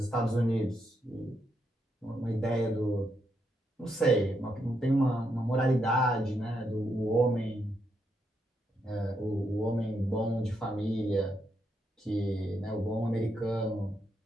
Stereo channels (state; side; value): normal; both; correlation 0.80